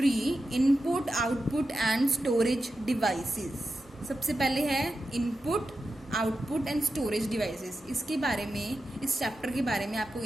Input, Output and Storage Devices. सबसे पहले है input, output and storage devices. इसके बारे में, इस chapter के बारे में आपको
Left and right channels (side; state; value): both; normal; correlation 0.90